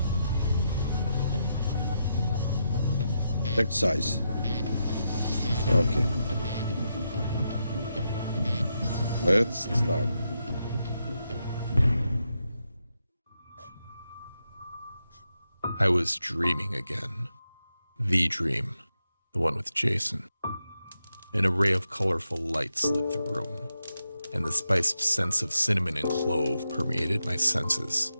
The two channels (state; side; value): inverted; both; correlation -0.84